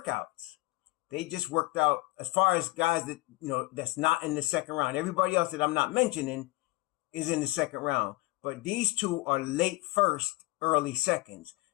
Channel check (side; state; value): right; quieter; 21.8 dB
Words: they just worked out as far as guys that, that's not in the second round. Everybody else that I'm not mentioning is in the second round. But these two are late first, early seconds.